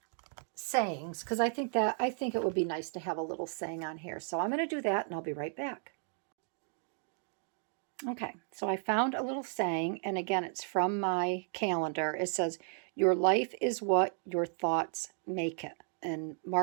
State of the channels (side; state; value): left; silent; 55 dB below the other